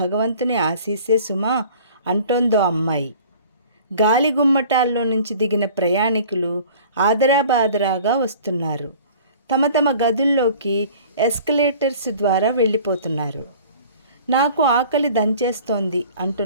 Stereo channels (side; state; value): both; inverted; correlation -0.47